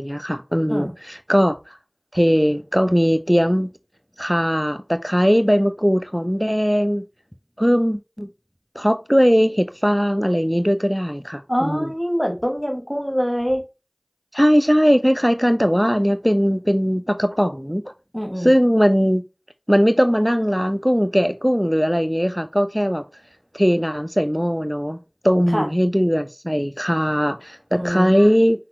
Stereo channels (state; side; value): identical; both; correlation 1.00